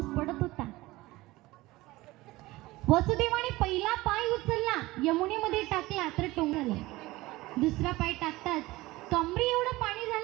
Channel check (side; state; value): left; quieter; 19.5 dB